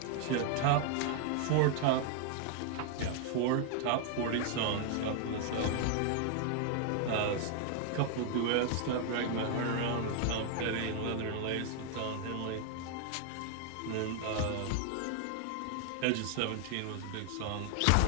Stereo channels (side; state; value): both; different; correlation 0.00